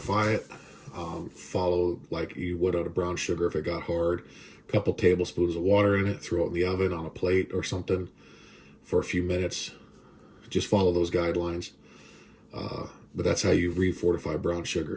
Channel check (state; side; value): identical; both; correlation 1.00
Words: it. Follow like you would on a brown sugar if it got hard. A couple tablespoons of water in it, throw it in the oven on a plate or something for a few minutes. Just follow those guidelines. But that's how you refortify brown